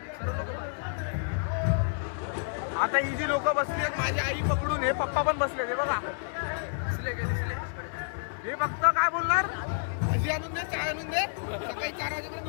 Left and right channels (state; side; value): silent; right; 58 dB below the other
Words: आता ही जी लोक बसली आहेत माझी आई पकडून हे पप्पा पण बसले हे बघा. हे फक्त काय बोलणार भजी आणून दे चाय आणून दे. सकाळी 4 वाजेपर्यंत